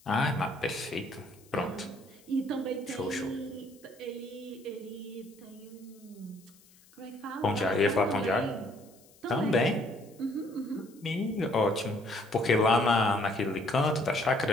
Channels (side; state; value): left; noise; hiss, 27 dB below the sound